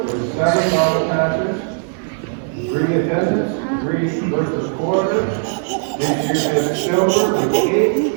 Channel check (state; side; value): silent; left; 64 dB below the other